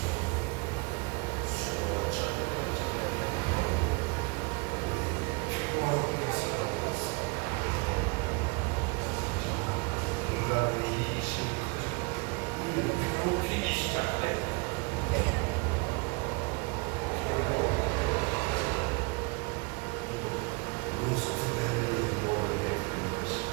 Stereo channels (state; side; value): quieter; left; 29.4 dB